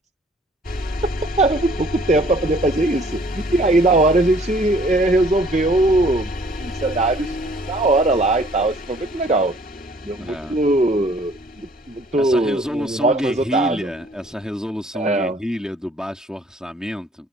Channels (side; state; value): both; normal; correlation 0.57